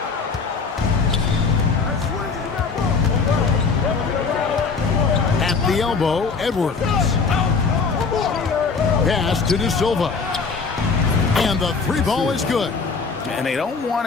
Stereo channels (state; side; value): quieter; right; 4.9 dB